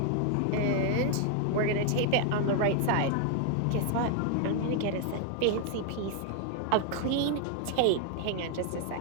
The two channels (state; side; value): different; both; correlation 0.00